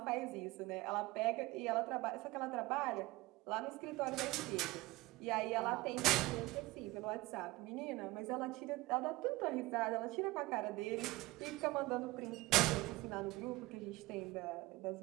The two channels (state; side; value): quieter; left; 20.0 dB